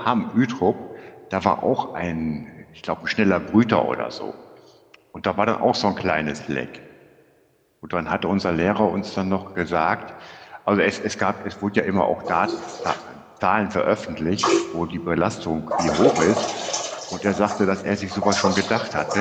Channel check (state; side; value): identical; both; correlation 1.00